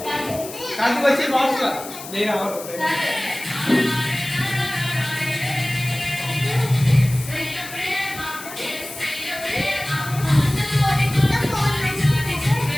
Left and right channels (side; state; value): left; noise; hiss, 12 dB below the sound